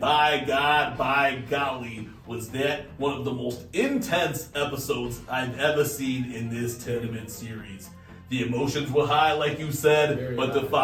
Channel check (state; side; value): identical; both; correlation 1.00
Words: God, by golly, was that one of the most intense episodes I've ever seen in this tournament series. The emotions were high, like you said, Very but high. the